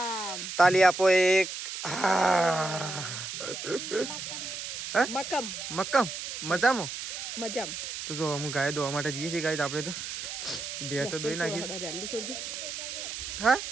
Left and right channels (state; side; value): noise; right; hiss, 7 dB below the sound